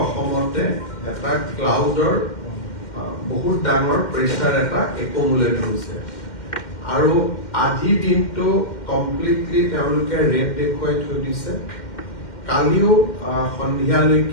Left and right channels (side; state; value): right; late; 2.1 ms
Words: অসমতে এটা ক্লাউডৰ বহুত ডাঙৰ প্ৰেছাৰ এটা একুমুলেট হৈছে আৰু আজিৰ দিনটো কমপ্লিটলি তেওঁলোকে ৰেড দেখুৱাই থৈ দিছে। কালিও